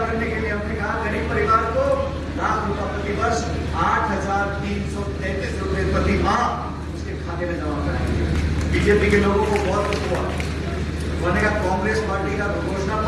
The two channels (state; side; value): identical; both; correlation 1.00